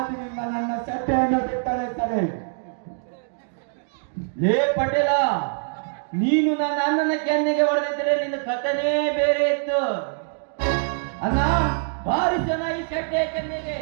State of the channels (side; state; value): left; silent; digital silence